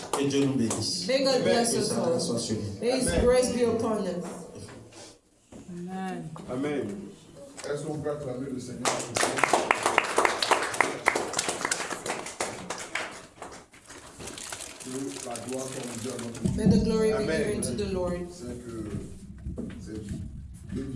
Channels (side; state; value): both; identical; correlation 1.00